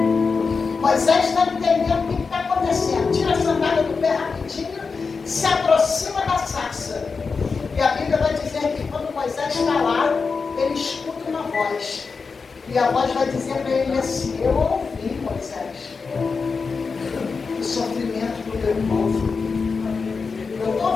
Moisés está entendendo o que está acontecendo. Tira a sandália do pé rapidinho, se aproxima da sarça. E a Bíblia vai dizer que quando Moisés está lá, ele escuta uma voz. E a voz vai dizer para ele assim: eu ouvi, Moisés, o sofrimento do meu povo. Eu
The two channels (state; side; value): quieter; right; 4.9 dB